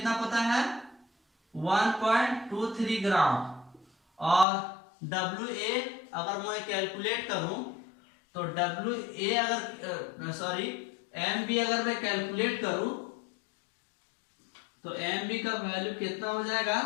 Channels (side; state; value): right; drops out; at 4.5 s